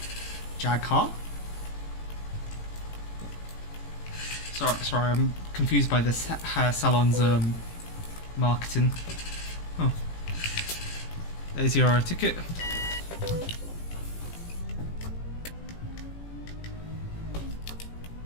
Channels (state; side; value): late; right; 18 ms